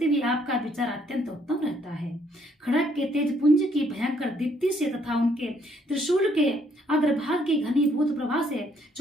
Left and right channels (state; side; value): normal; both; correlation 0.68